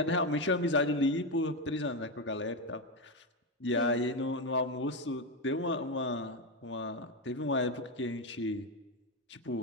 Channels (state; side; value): normal; both; correlation 0.10